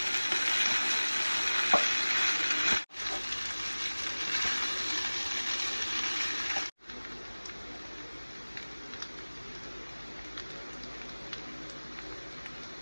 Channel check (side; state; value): both; inverted; correlation -1.00